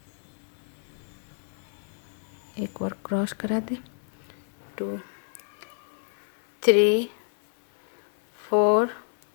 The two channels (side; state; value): right; silent; digital silence